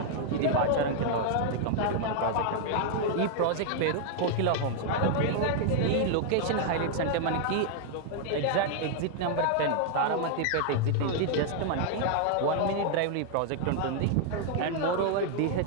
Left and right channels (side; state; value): both; different; correlation 0.00